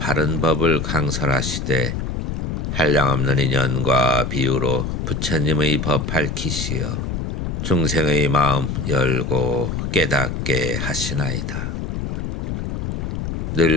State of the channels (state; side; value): noise; left; rumble, 3 dB below the sound